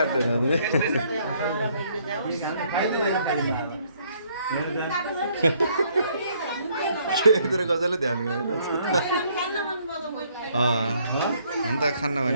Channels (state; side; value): inverted; both; correlation -0.66